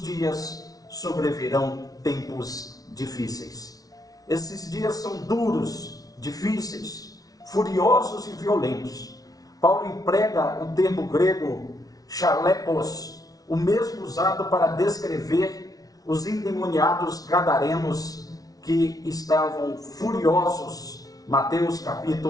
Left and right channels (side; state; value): right; late; 0.18 ms